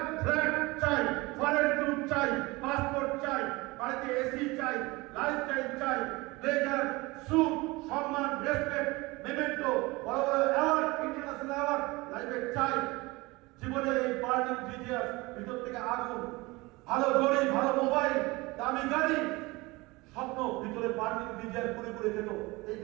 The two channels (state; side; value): quieter; left; 22.9 dB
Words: ফ্ল্যাট চাই, ফরেন গ্রুপ চাই, পাসপোর্ট চাই, বাড়িতে এসি চাই, লাইফস্টাইল চাই, ব্লেজার, স্যুট, সম্মান, রেসপেক্ট, মেমেন্টো, বড় বড় অ্যাওয়ার্ড, ইন্টারন্যাশনাল অ্যাওয়ার্ড লাইফে চাই। জীবনে এই বার্নিং ডিজিয়াস, ভিতর থেকে আগুন, ভালো ঘড়ি, ভালো মোবাইল, দামি গাড়ি, স্বপ্ন ভিতরে বার্নিং ডিজায়ার পুরে পুরে খেত। এই